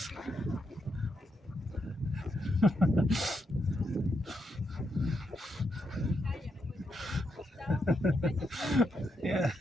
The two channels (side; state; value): both; normal; correlation 0.81